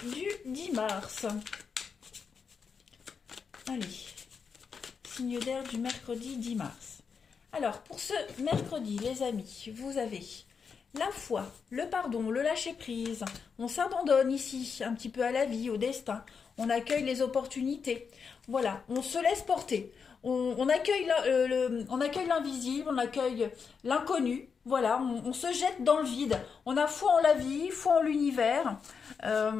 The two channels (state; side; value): quieter; right; 5.9 dB